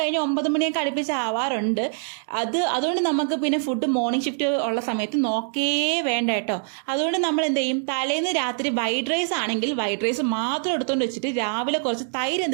9 മണിയൊക്കെ അടുപ്പിച്ച് ആവാറുണ്ട്. അതുകൊണ്ട് നമുക്ക് പിന്നെ ഫുഡ് മോർണിംഗ് ഷിഫ്റ്റ് ഉള്ള സമയത്ത് നോക്കേ വേണ്ട കേട്ടോ. അതുകൊണ്ട് നമ്മൾ എന്ത് ചെയ്യും, തലേന്ന് രാത്രി വൈറ്റ് റൈസ് ആണെങ്കിൽ വൈറ്റ് റൈസ് മാത്രം എടുത്തുകൊണ്ട് വെച്ചിട്ട് രാവിലെ കുറച്ച് തൈര്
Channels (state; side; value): silent; left; 62 dB below the other